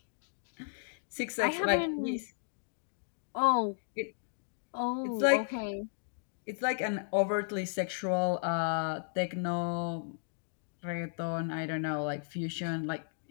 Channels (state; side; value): silent; right; digital silence